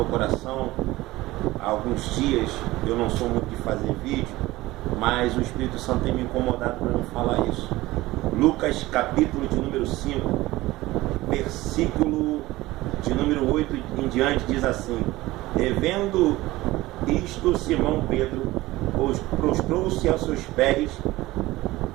coração há alguns dias. Eu não sou muito de fazer vídeo, mas o Espírito Santo tem me incomodado para não falar isso. Lucas capítulo de número 5, versículo de número 8 em diante, diz assim: revendo isto, Simão Pedro prostrou-se aos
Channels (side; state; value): left; quieter; 18.4 dB